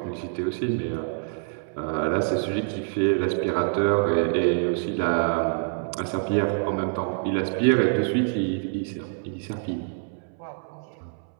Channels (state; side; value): silent; left; 61 dB below the other